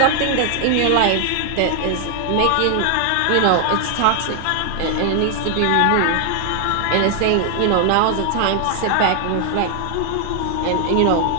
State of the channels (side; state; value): both; different; correlation 0.00